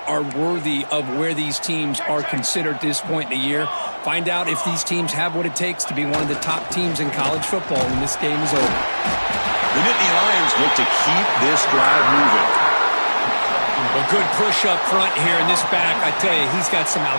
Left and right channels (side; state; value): both; inverted; correlation -1.00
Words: are worthy of where these teams are considered at this point in the year. Find out if these teams have what it takes to be one of the top teams in college football when this game is over. The Nittany Lions look to keep this drive moving. A good push up front here in this back. I tell you, he's got some